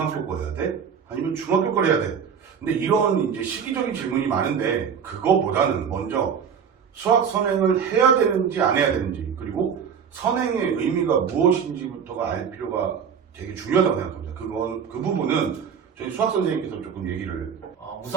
거 해야 돼? 아니면 중학교 거 해야 돼? 근데 이런 이제 시기적인 질문이 많은데 그거보다는 먼저 수학 선행을 해야 되는지 안 해야 되는지, 그리고 선행의 의미가 무엇인지부터가 알 필요가 되게 중요하다고 생각합니다. 그 부분은 저희 수학 선생님께서 조금 얘기를.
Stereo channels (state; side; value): quieter; left; 7.1 dB